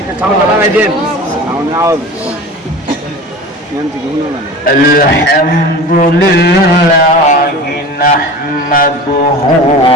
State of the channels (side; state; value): both; normal; correlation 0.35